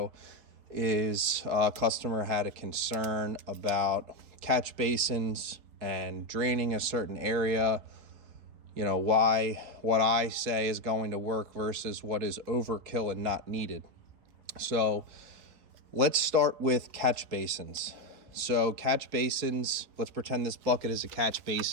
is a customer had a concern about catch basins and draining a certain area. You know, why what I say is going to work versus what is overkill and not needed. So let's start with catch basins. So catch basins, let's pretend this bucket is a catch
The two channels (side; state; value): left; late; 4.6 ms